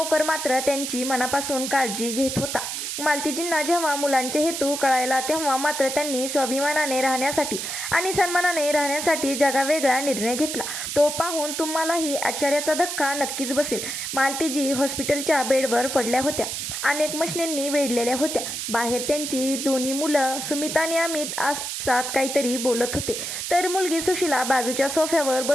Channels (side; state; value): right; noise; hiss, 4 dB below the sound